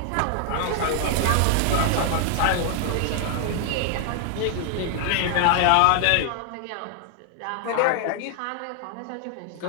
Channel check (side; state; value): both; different; correlation 0.00